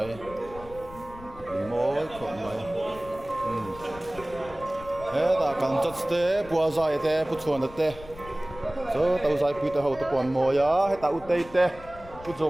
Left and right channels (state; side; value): noise; left; rumble, 17 dB below the sound